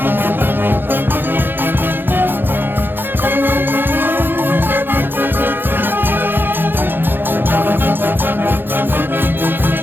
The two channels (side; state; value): left; late; 0.099 ms